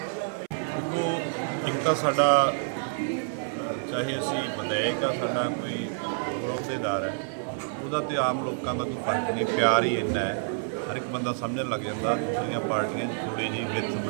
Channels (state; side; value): silent; left; 59 dB below the other